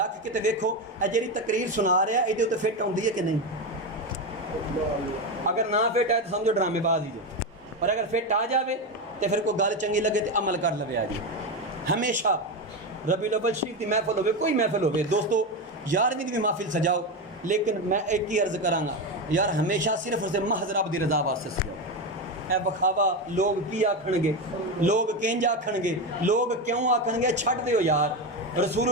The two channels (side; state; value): both; normal; correlation 0.15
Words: کے تے ویکھو اے جڑی تقریر سنا رہا ہے تے فٹ ہوندی ہے کہ نہیں اگر نہ فٹ ہے تو سمجھو ڈرامے باز ہی جو اور اگر فٹ آ جاوے تو پھر کوئی گل چنگی لگے تو عمل کر لوے آ جی ہمیشہ ربیع الاول شریف کی محفل ہوئے کوئی محفل ہوئے دوستو 11ویں بھی محفل سجاؤ لیکن میں ایک ہی عرض کراں گا یار ہمیشہ صرف اور صرف محض رب دی رضا واسطے سجاؤ اے بخاوا لوگ کی آکھن گے لوگ کنج آکھن گے لوگ کیوں آکھن گے چھڈ دیو یار رسول